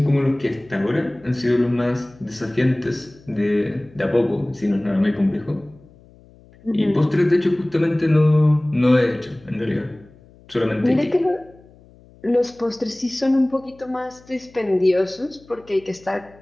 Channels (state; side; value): noise; left; hum, 26 dB below the sound